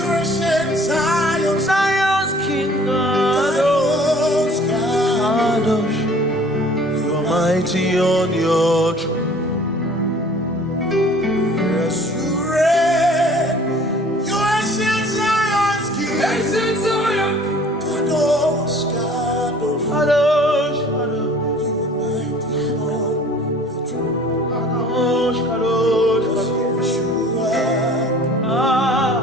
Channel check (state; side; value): normal; both; correlation 0.50